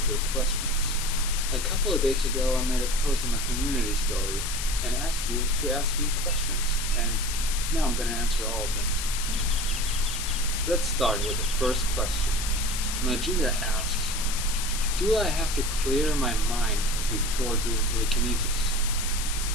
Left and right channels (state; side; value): noise; left; hiss, 4 dB below the sound